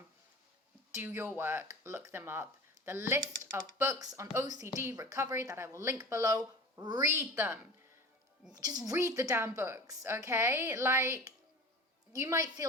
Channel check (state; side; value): normal; both; correlation 0.36